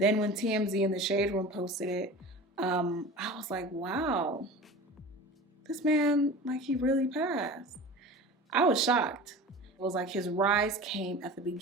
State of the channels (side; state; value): both; normal; correlation 0.35